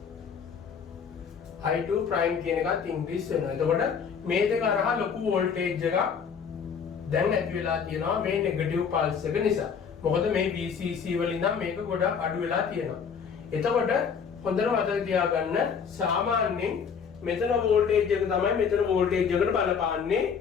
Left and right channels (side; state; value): right; quieter; 6.5 dB